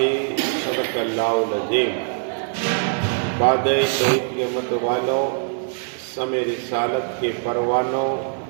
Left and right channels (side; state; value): left; silent; digital silence